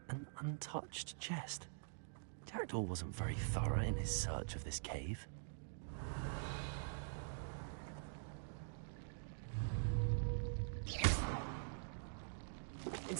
An untouched chest. Jackdaw wasn't very thorough in his search of this cave.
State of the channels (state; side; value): silent; left; digital silence